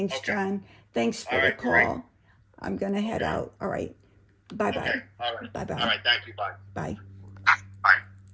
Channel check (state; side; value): identical; both; correlation 1.00